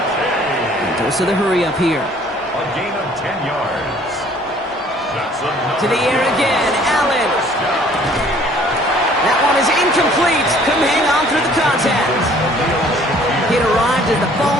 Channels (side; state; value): both; normal; correlation 0.56